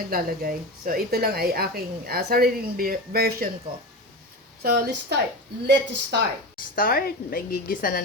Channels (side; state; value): both; normal; correlation 0.25